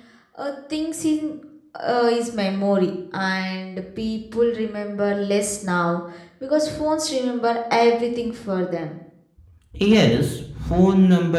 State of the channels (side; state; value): both; identical; correlation 1.00